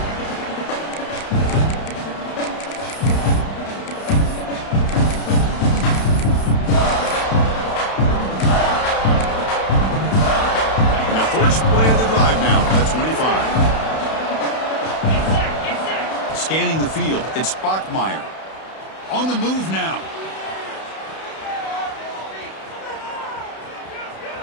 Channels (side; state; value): right; late; 31 ms